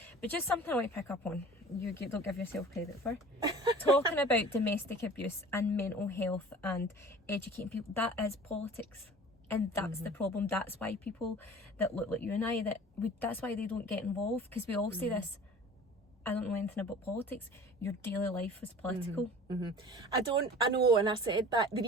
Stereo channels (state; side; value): normal; both; correlation 0.43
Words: but just something I want to pick up on. You don't give yourself credit for talking about domestic abuse and mental health and educating people. That is politics. And that's the problem. That's why people that look like you and I, that's why they don't get involved, because we all say this. I don't know anything about politics. Your daily life is political. I know, and I said that. The